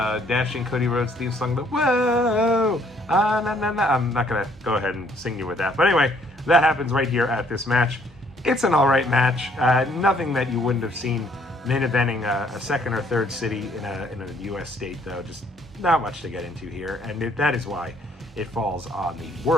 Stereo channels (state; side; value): normal; both; correlation 0.64